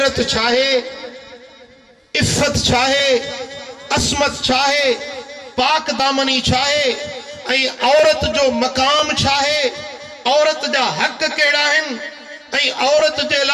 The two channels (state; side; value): identical; both; correlation 1.00